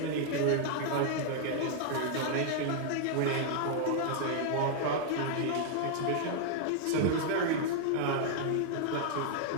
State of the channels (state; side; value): different; both; correlation -0.01